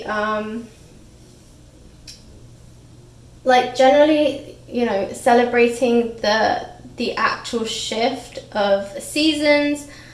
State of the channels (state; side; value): identical; both; correlation 1.00